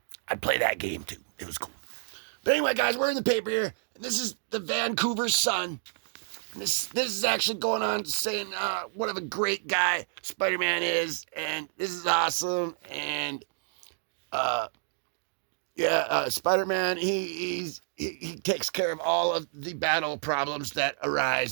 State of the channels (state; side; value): silent; left; digital silence